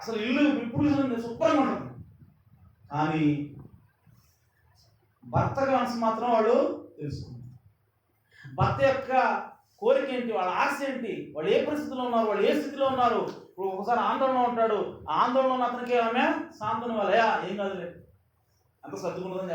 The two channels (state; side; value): identical; both; correlation 1.00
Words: ఇల్లు ఇప్పుడు శుభ్రంగా ఉంటుంది. కానీ భర్త మనసు మాత్రం వాళ్ళు తెలుసుకుంటారు. భర్త యొక్క కోరిక ఏంటి, వాళ్ళ ఆశ ఏంటి, వాళ్ళు ఏ పరిస్థితిలో ఉన్నారు, వాళ్ళు ఏ స్థితిలో ఉన్నారు. ఇప్పుడు ఒకసారి ఆందోళన ఉంటాడు, ఆ ఆందోళన ఉన్న అతనికి ఆమె సాంత్వన వాళ్ళయా ఏం కాదులే అంత సర్దుకుంటుందని